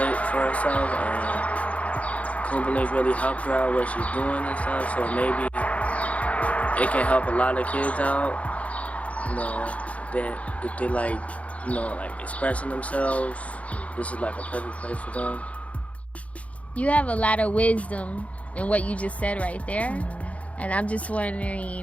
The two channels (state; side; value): late; right; 0.066 ms